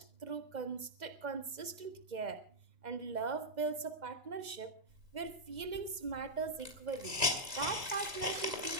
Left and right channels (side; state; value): left; late; 2.0 ms